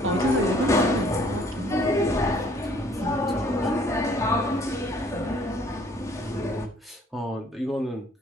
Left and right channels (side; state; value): both; normal; correlation 0.59